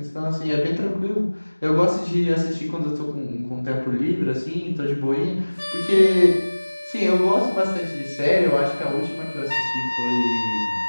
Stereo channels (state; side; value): inverted; both; correlation -1.00